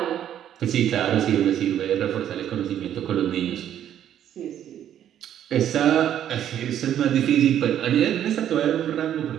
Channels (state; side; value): quieter; left; 10.5 dB